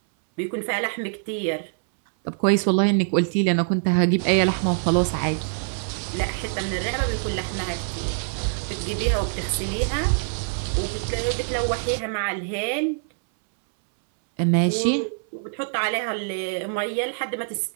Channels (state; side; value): silent; left; 62 dB below the other